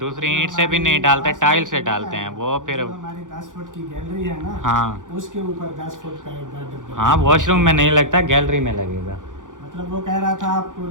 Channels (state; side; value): late; left; 0.88 ms